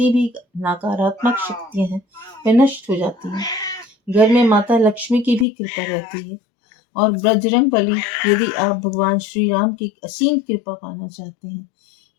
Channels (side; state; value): right; drops out; at 5.5 s